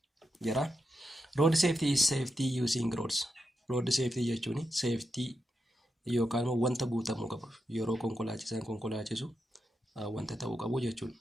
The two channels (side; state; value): both; normal; correlation 0.86